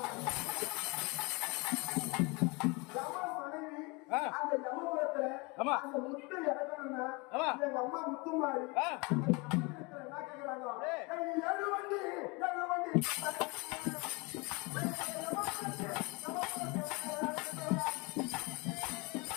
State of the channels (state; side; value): quieter; right; 27.7 dB